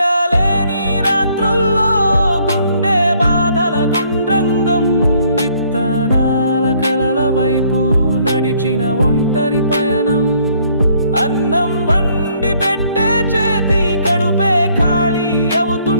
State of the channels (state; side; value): inverted; both; correlation -0.65